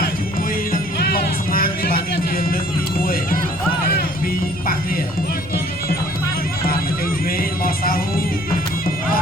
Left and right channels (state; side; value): noise; right; rumble, 18 dB below the sound